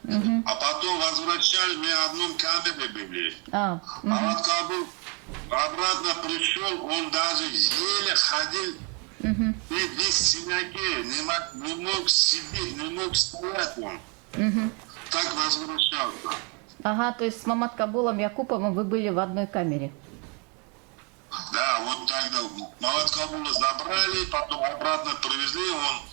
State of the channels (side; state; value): left; quieter; 34.0 dB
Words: а потом возвращали, мы в одном камере были. Мамат Кхабул обратно пришел, он даже еле ходил, и весь синяки, не мог сидеть, не мог стоять он. Так возвращался. Ага, то есть с Мамат Кабулом Якуповым вы были в одной камере. Да, вот тогда Мамат Кабула забрали, потом обратно привезли, он